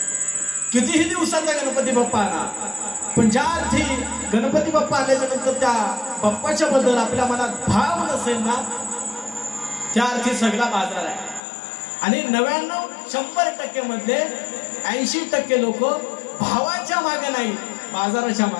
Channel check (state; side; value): drops out; right; at 11.4 s